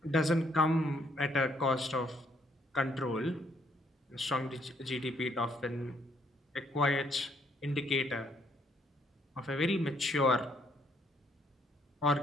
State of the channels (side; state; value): both; normal; correlation 0.70